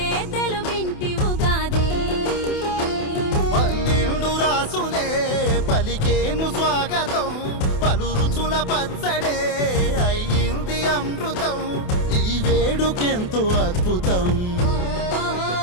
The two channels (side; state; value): right; late; 28 ms